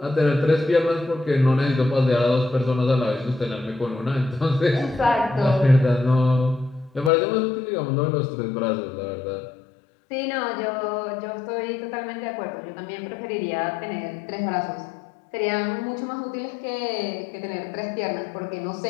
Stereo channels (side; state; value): right; drops out; at 7.1 s